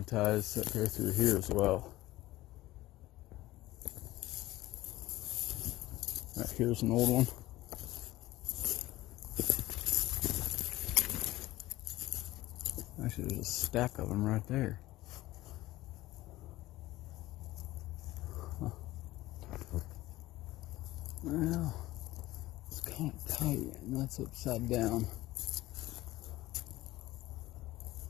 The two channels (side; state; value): right; quieter; 17.0 dB